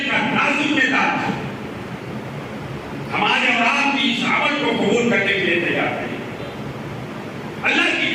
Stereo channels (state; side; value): identical; both; correlation 1.00